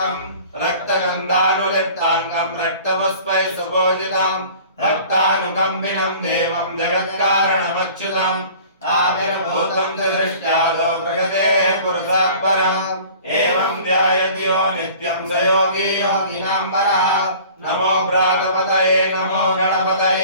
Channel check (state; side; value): inverted; both; correlation -0.46